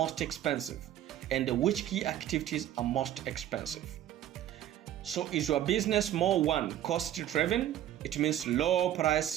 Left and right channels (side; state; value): left; quieter; 11.9 dB